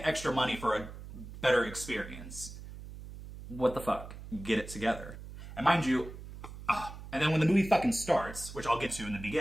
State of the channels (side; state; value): right; noise; hum, 13 dB below the sound